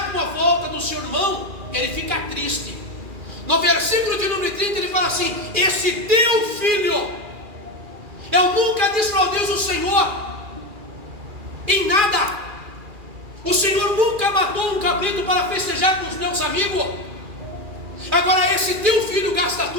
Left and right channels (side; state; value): left; late; 2.4 ms